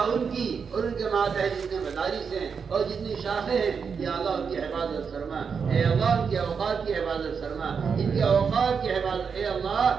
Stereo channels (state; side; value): quieter; left; 6.1 dB